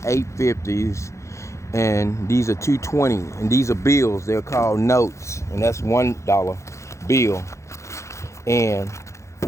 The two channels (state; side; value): late; right; 0.14 ms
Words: 8 50s, and these are 220, and these are bills. They're called notes, and that's $1 bill. And